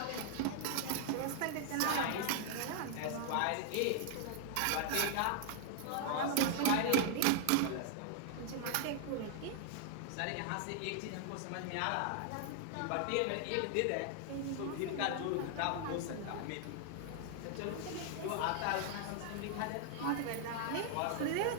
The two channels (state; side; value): different; both; correlation 0.00